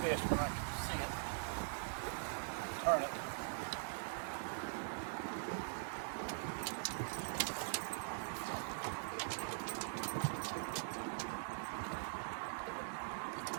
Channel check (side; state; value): left; silent; digital silence